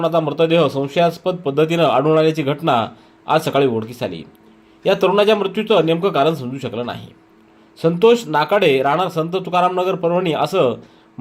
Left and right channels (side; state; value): both; identical; correlation 1.00